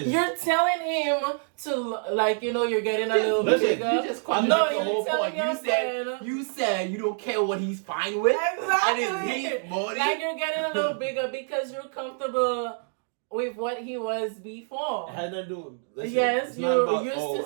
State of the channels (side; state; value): left; silent; 60 dB below the other